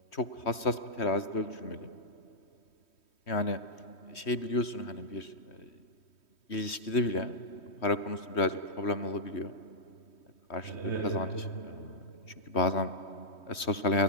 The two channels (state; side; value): late; right; 3.2 ms